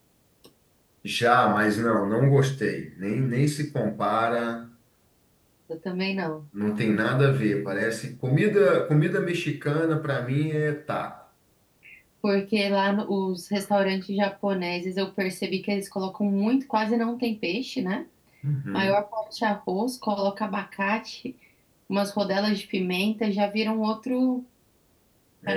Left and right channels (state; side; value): identical; both; correlation 1.00